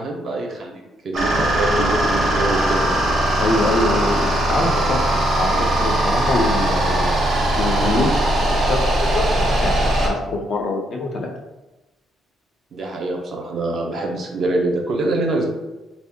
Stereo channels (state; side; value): normal; both; correlation 0.75